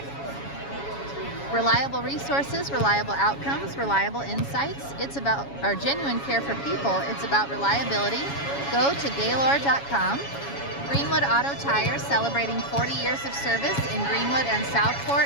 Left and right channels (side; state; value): right; late; 7.2 ms